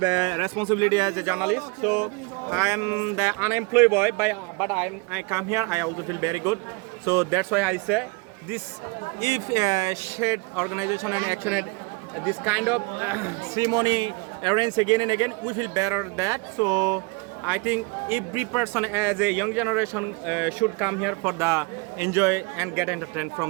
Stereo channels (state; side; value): quieter; left; 27.5 dB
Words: a responsibility as a journalist. So I am the unemployed boy, but I come here. I also feel very good. So that's why I say this. If shared organization and action at this kind of ceremony arranged again and again, we feel better that. So I think every person as a young generation should come here for the enjoy and get entertained from